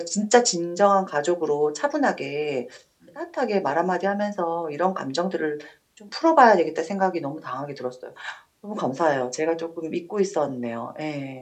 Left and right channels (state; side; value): identical; both; correlation 1.00